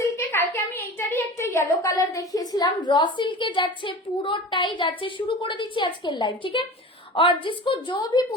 কালকে আমি এইটারই একটা ইয়েলো কালার দেখিয়েছিলাম। র সিল্কে যাচ্ছে, পুরোটাই যাচ্ছে। শুরু করে দিচ্ছি আজকের লাইভ, ठीक है? और जिसको जो भी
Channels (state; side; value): normal; both; correlation 0.35